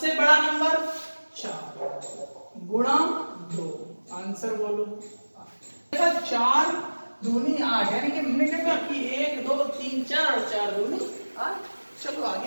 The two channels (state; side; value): inverted; both; correlation -1.00